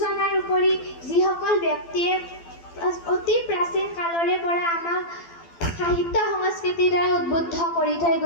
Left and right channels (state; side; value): late; right; 12 ms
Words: উপৰি যিসকল ব্যক্তিয়ে অতি প্ৰাচীন কালৰে পৰা আমাক সাহিত্য সংস্কৃতিৰ দ্বাৰা উদ্বুদ্ধ কৰি থৈ